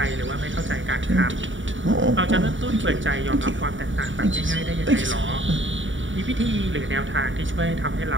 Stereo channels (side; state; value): left; late; 0.56 ms